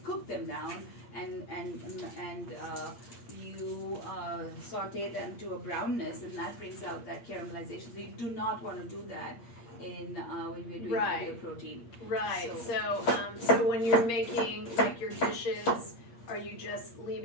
cook them down and you saute them to a brownness, and that brings out that caramelization. So you do not want to do that when we're doing Right. your protein. Right. So- So when you're making like your dishes are you just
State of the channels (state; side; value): late; right; 8.6 ms